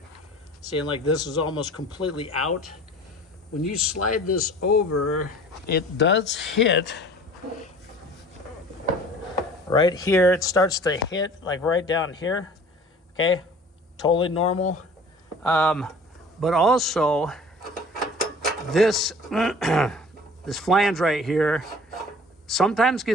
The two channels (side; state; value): both; normal; correlation 0.45